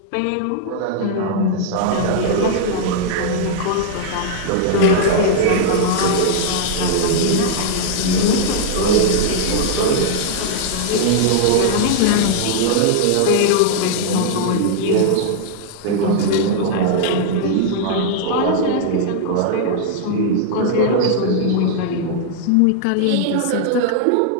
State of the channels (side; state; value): both; different; correlation -0.01